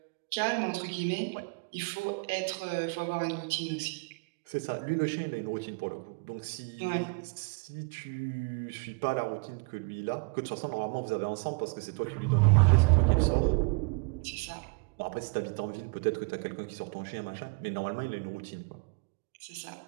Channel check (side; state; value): left; quieter; 33.0 dB